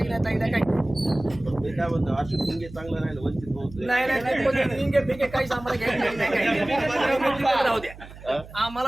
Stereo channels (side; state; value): right; noise; hum, 17 dB below the sound